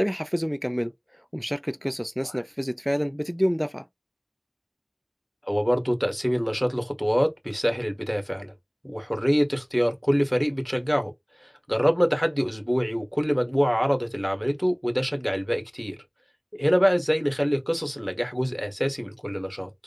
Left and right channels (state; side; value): identical; both; correlation 1.00